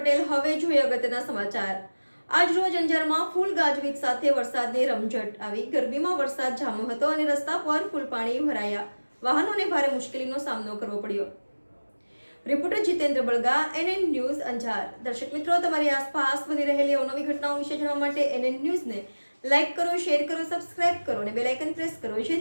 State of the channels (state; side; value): inverted; both; correlation -1.00